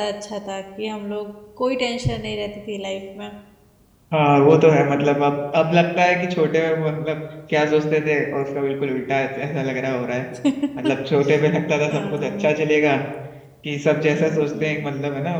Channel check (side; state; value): both; identical; correlation 1.00